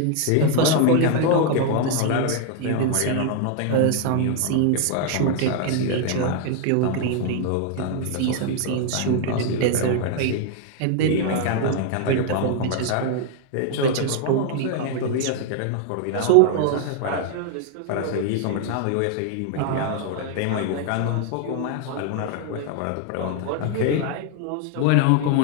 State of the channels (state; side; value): different; both; correlation 0.00